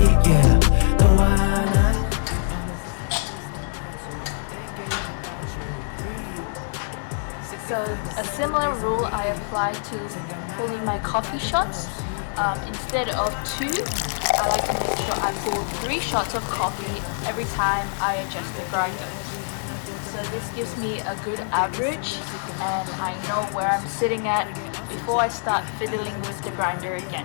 yeah. 너와 나 So a similar rule I apply to pulling my coffee shots. Instead of 2, I like to make sure I pull 3 shots of coffee every time I adjust the grinder. So this gives me a good average, and I know where I'm sitting at before I start fiddling with the grinder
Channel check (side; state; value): right; silent; digital silence